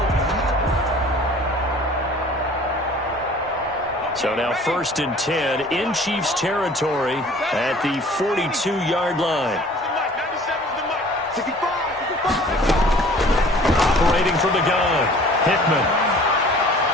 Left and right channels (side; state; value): both; normal; correlation 0.49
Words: So now 1st and 10 in Chiefs territory at the 42-yard line. Operating from the gun, Hickman.